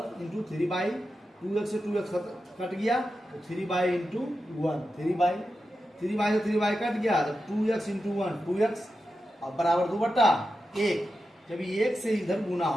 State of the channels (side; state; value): both; normal; correlation 0.90